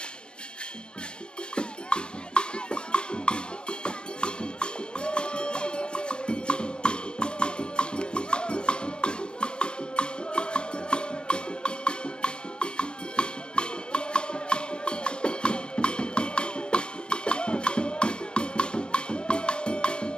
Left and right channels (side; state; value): right; late; 0.051 ms